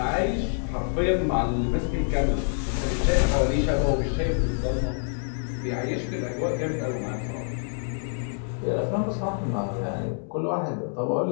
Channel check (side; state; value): right; silent; 61 dB below the other